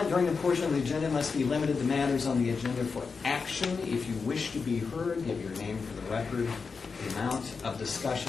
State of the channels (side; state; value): right; quieter; 5.0 dB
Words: during the portion of the agenda must be limited to matters on the agenda for action. If you wish to be heard, give your name for the record. The amount of